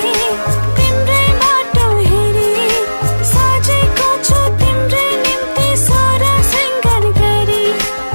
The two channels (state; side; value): inverted; both; correlation -1.00